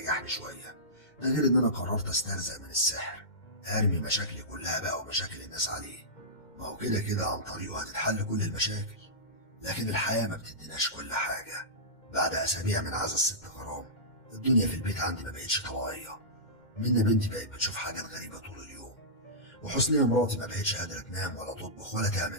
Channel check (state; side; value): late; right; 2.1 ms